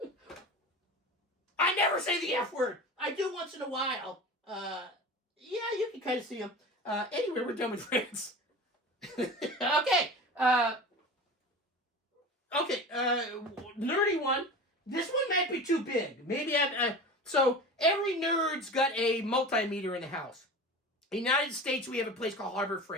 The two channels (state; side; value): normal; both; correlation 0.33